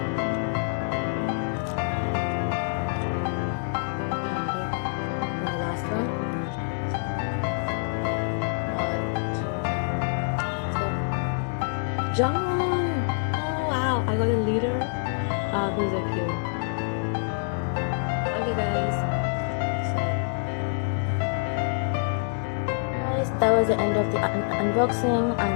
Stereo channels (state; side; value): silent; right; digital silence